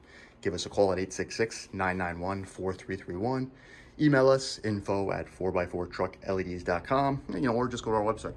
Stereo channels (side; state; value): both; identical; correlation 1.00